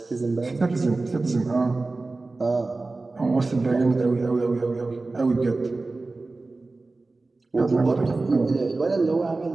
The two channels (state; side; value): quieter; left; 3.4 dB